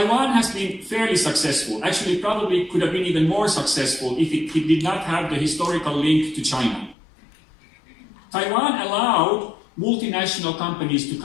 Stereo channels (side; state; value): right; drops out; at 7.0 s